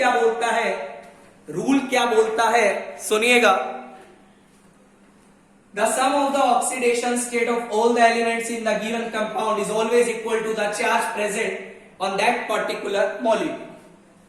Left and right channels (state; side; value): identical; both; correlation 1.00